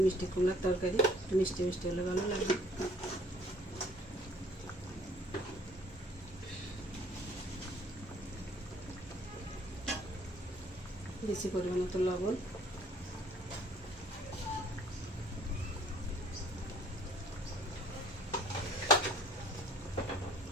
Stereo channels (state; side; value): normal; both; correlation 0.56